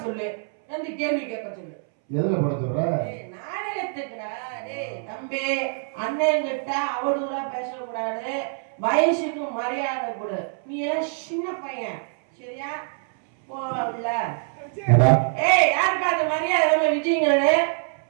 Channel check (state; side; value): silent; left; 62 dB below the other